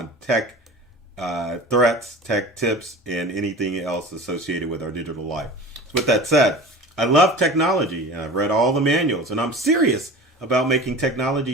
tech threats, tech tips, and anything else associated with our digital life. So with that said, I love technology, and I've read all the manuals, and I'm serious about making technology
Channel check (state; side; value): normal; both; correlation 0.37